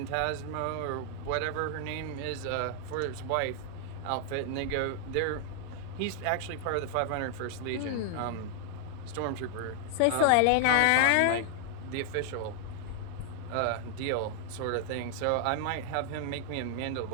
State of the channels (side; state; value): both; different; correlation 0.00